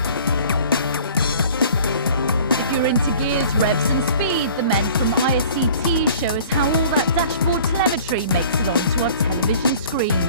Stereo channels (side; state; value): both; inverted; correlation -0.48